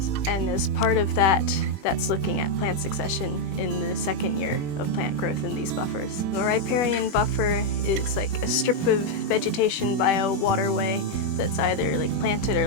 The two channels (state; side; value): late; right; 21 ms